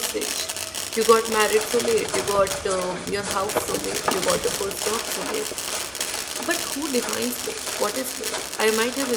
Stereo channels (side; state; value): both; identical; correlation 1.00